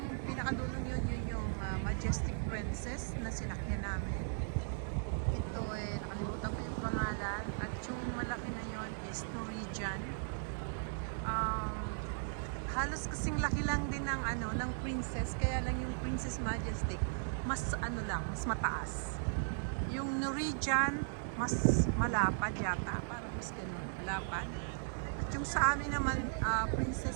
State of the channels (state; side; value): silent; left; digital silence